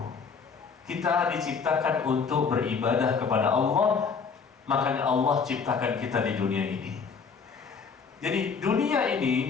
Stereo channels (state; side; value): quieter; right; 5.6 dB